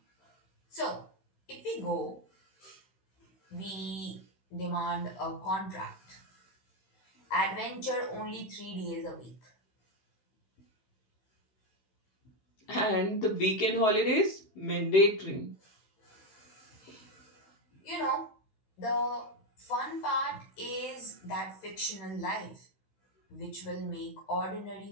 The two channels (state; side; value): late; right; 16 ms